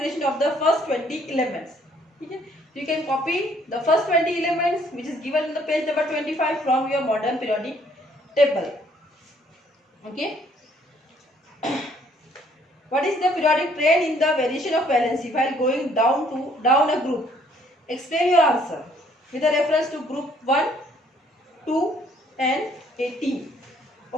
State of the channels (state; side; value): normal; both; correlation 0.63